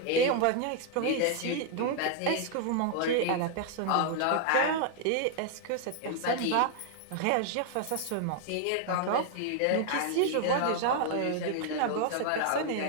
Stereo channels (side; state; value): both; different; correlation 0.00